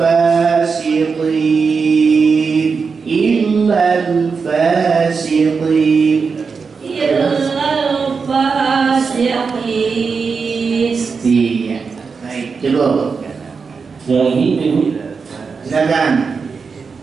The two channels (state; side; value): quieter; left; 5.2 dB